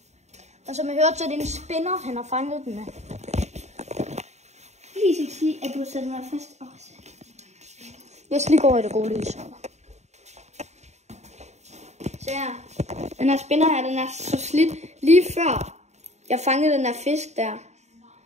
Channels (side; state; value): left; late; 0.33 ms